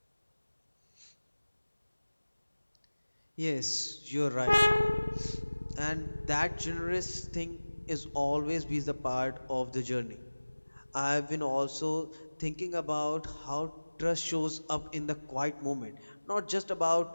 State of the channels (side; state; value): both; inverted; correlation -1.00